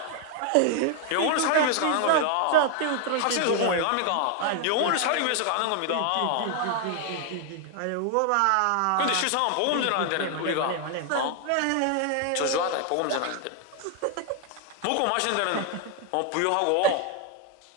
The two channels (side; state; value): both; different; correlation 0.00